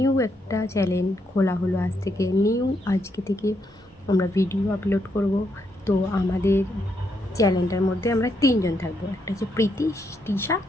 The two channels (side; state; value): both; normal; correlation 0.78